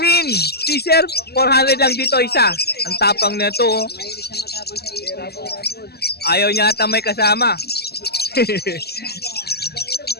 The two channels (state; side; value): late; right; 0.46 ms